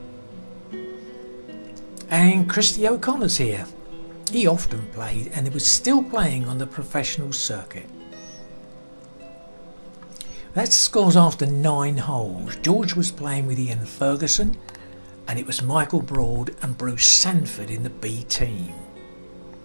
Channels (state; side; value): inverted; both; correlation -1.00